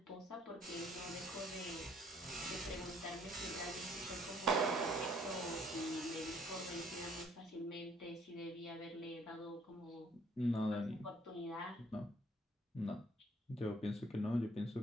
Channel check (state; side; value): normal; both; correlation 0.62